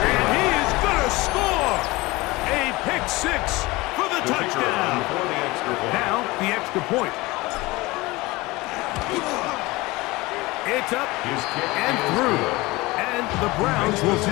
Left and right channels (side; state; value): right; quieter; 21.6 dB